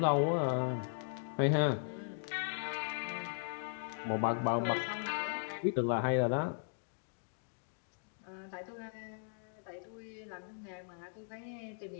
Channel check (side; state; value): right; silent; digital silence